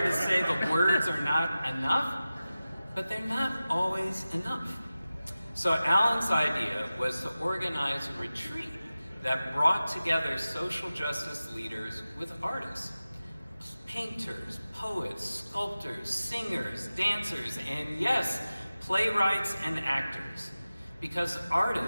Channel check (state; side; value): inverted; both; correlation -0.95